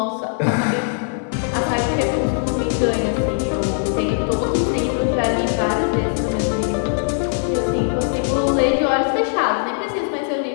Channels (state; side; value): silent; right; 66 dB below the other